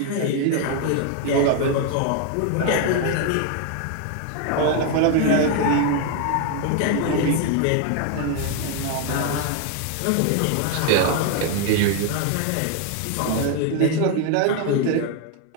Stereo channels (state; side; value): different; both; correlation 0.01